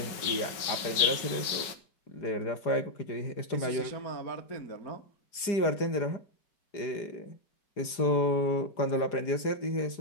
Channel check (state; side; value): late; right; 4.9 ms